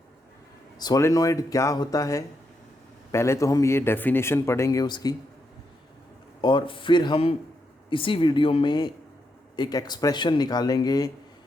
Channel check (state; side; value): normal; both; correlation 0.81